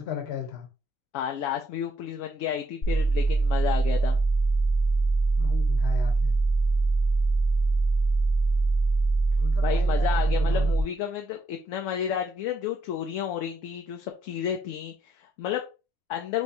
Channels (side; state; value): both; normal; correlation 0.80